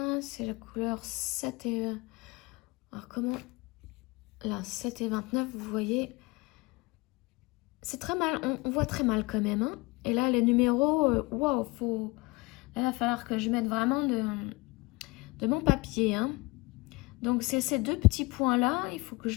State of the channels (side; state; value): right; quieter; 24.3 dB